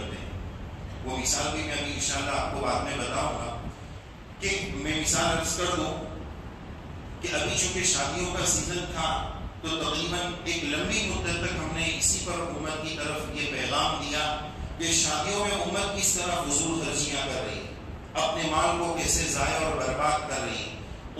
ہیں. وہ مثال بھی میں ابھی انشاءاللہ آپ کو بعد میں بتاؤں گا. کہ میں مثال عرض کر دوں کہ ابھی چونکہ شادیوں کا سیزن تھا تو تقریباً ایک لمبی مدت تک ہم نے اسی پر حکومت کی طرف یہ پیغام دیا کہ شادیوں میں امت کس طرح فضول خرچیاں کر رہی، اپنے مال کو کیسے ضائع اور برباد کر رہی.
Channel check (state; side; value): identical; both; correlation 1.00